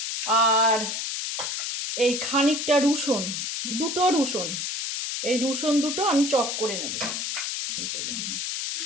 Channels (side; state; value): left; noise; hiss, 3 dB below the sound